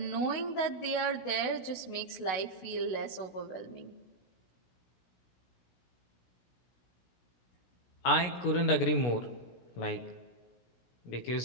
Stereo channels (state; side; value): late; right; 16 ms